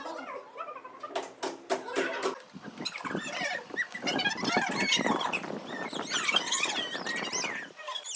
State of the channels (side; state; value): both; identical; correlation 1.00